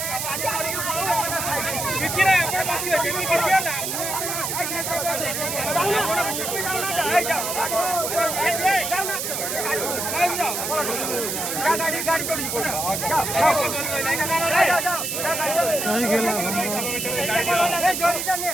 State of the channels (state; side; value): noise; right; hiss, 2 dB below the sound